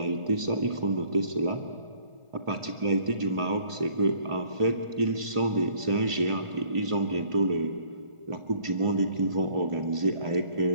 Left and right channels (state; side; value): late; left; 1.5 ms